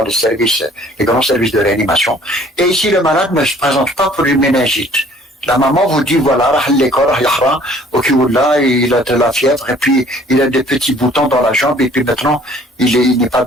les grands services de réanimation. Et ici, le malade ne se présente pas pour une méningite. La maman vous dit, voilà, ok, là, il a de la fièvre, et puis il a des petits boutons dans la jambe, et puis maintenant, il n'est pas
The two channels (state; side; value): normal; both; correlation 0.55